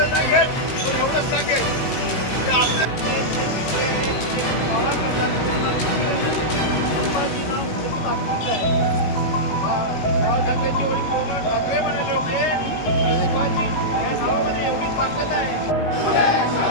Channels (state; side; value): late; right; 18 ms